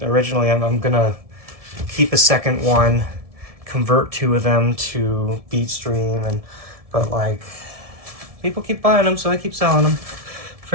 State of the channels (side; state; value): left; late; 1.7 ms